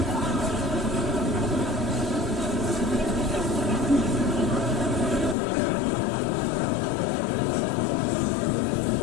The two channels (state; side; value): drops out; right; at 5.4 s